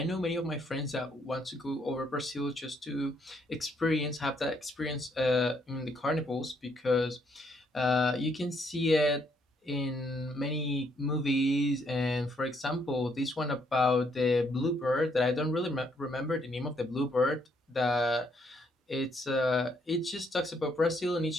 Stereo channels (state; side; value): normal; both; correlation 0.71